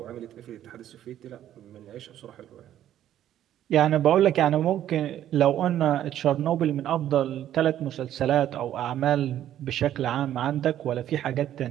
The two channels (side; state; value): left; quieter; 11.6 dB